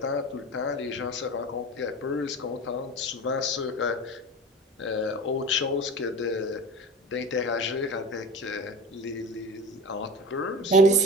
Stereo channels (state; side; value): normal; both; correlation 0.33